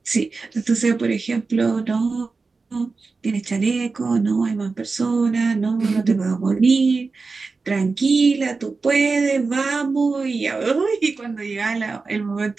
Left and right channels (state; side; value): quieter; left; 4.2 dB